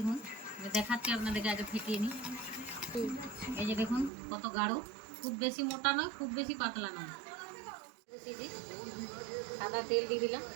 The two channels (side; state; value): left; drops out; at 4.1 s